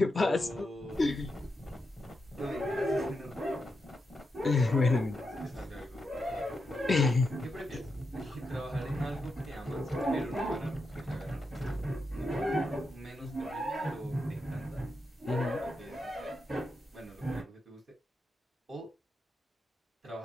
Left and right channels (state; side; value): normal; both; correlation 0.86